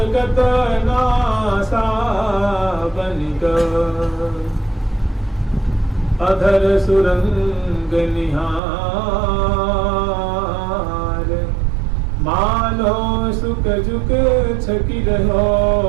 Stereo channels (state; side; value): drops out; left; at 8.6 s